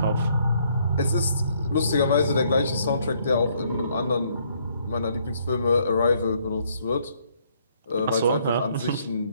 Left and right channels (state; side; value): inverted; both; correlation -0.68